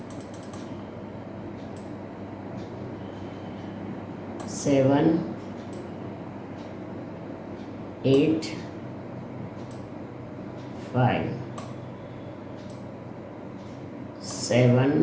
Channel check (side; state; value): both; identical; correlation 1.00